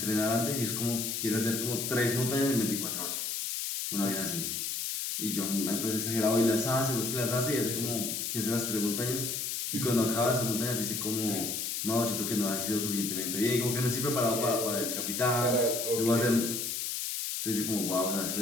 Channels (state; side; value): noise; left; hiss, 2 dB below the sound